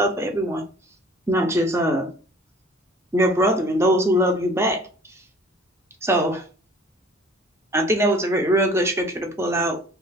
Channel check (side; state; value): both; normal; correlation 0.50